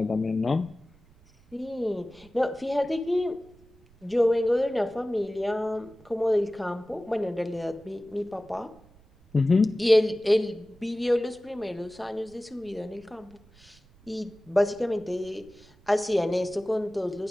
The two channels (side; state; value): right; noise; rumble, 28 dB below the sound